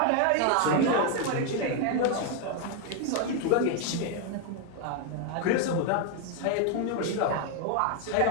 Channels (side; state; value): both; different; correlation 0.01